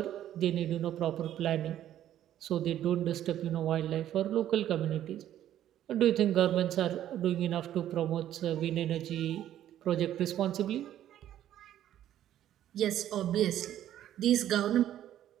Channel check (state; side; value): quieter; left; 11.8 dB